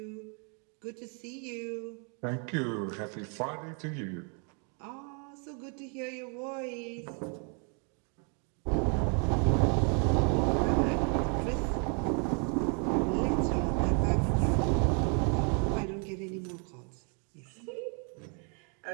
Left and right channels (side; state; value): left; quieter; 38.5 dB